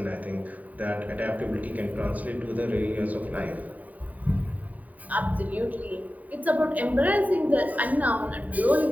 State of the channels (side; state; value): left; late; 0.074 ms